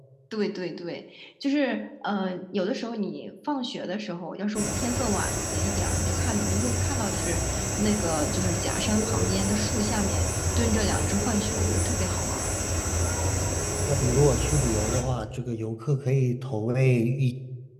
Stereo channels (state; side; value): identical; both; correlation 1.00